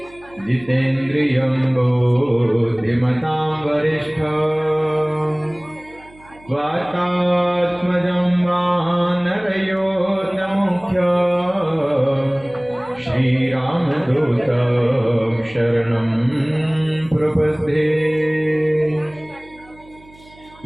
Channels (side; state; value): right; noise; hum, 25 dB below the sound